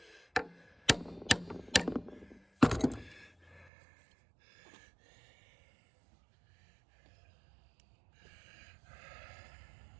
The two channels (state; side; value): drops out; left; at 3.7 s